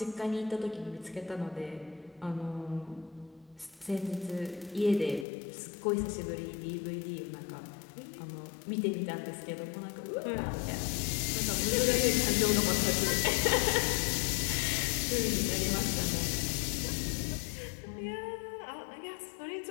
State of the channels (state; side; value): drops out; right; at 5.2 s